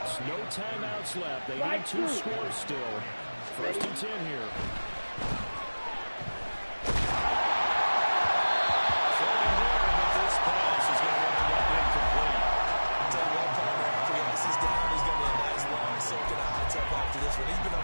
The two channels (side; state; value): both; inverted; correlation -1.00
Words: No timeouts left. They need 2 scores still. 1st and 10 here.